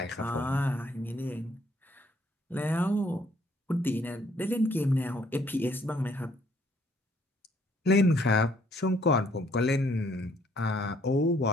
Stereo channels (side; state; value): both; normal; correlation 0.65